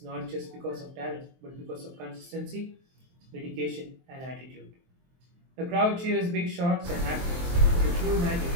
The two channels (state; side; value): late; left; 23 ms